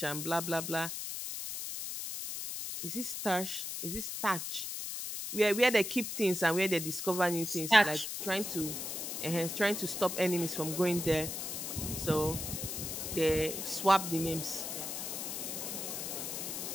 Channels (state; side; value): noise; left; hiss, 5 dB below the sound